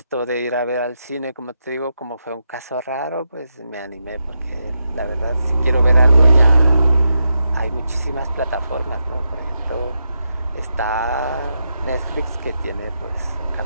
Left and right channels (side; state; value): both; inverted; correlation -0.86